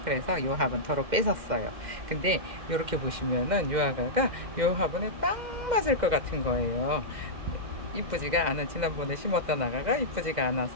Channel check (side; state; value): left; late; 2.0 ms